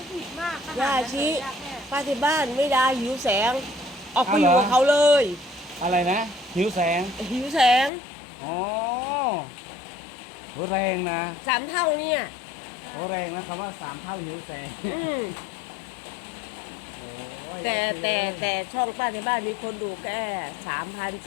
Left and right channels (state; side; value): drops out; right; at 7.9 s